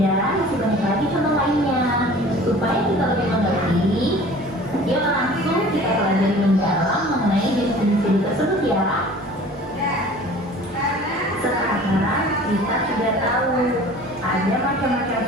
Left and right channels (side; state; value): both; normal; correlation 0.45